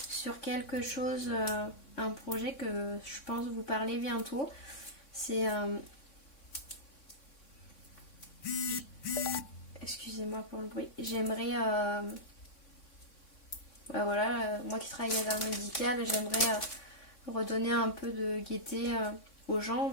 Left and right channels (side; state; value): right; late; 3.6 ms